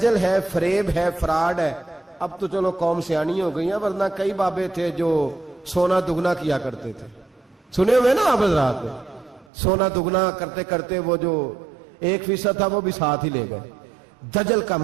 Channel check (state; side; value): drops out; left; at 9.5 s